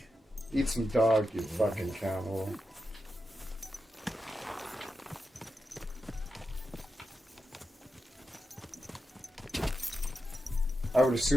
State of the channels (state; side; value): normal; both; correlation 0.88